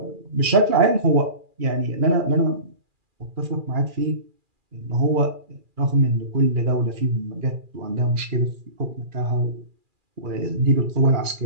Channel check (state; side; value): late; left; 2.4 ms